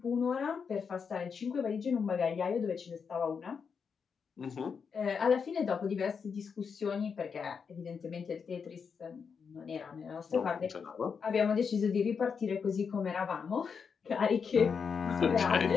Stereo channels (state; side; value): quieter; right; 6.1 dB